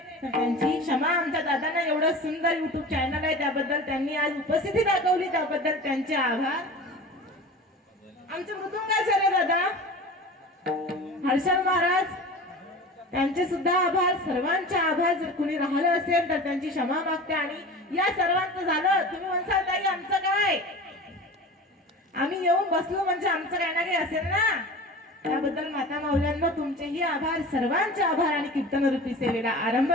तर त्यांची क्षमा. आमच्या दादांना एवढं सुंदर युट्यूब चॅनल आहे, त्याबद्दल त्यांनी आज उपस्थिती दाखवली, त्याबद्दल त्यांचे आभार. आमचे मृदुंगाचार्य दादा हर्षल महाराज, त्यांचे सुद्धा आभार. सर्वांचे आभार. जर कुणी राहिलं असेल तर त्यांची क्षमा मागते. आणि या सर्वांचं झालं. तुम्ही म्हणसाल ताई आमचं काय, आम्ही येऊन बसलो म्हणजे आमचं काय ना काही असेल ना. त्याबद्दल माता माऊल्यांना तुमचेही आभार, सर्वांचे आभार. आणि कीर्तन रूपी सेवेला आरंभ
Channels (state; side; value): normal; both; correlation 0.36